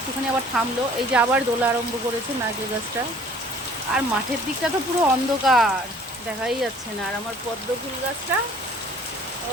আবার থামলো। এই যে আবার দোলা আরম্ভ করেছে নারকেল গাছটা। আর মাঠের দিকটা তো পুরো অন্ধকার, দেখাই যাচ্ছে না। আর আমার পদ্ম ফুল গাছটা,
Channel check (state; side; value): normal; both; correlation 0.53